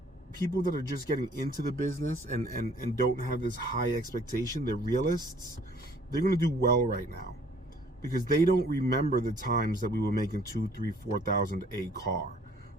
people that are just getting into the business and don't have this high expectation, they're realists, they're going to do well right now because they don't remember the times that we were making $2,000, $3,000, $4,000 a car.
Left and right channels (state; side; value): normal; both; correlation 0.57